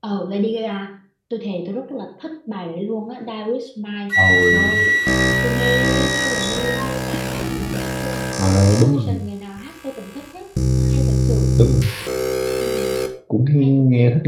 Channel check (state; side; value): identical; both; correlation 1.00